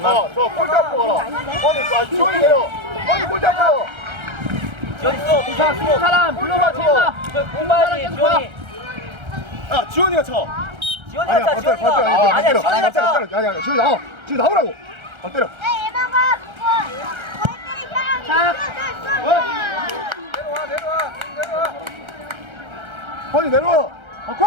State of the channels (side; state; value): left; late; 1.3 ms